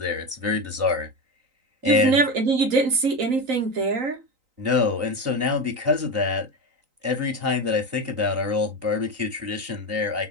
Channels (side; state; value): left; late; 3.9 ms